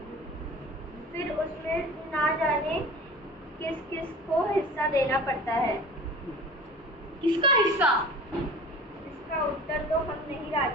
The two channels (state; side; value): normal; both; correlation 0.40